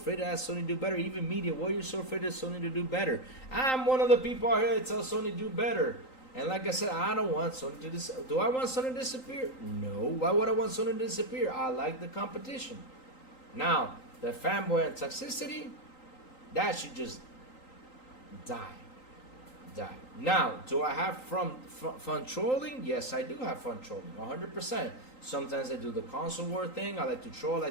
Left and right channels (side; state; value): right; late; 3.9 ms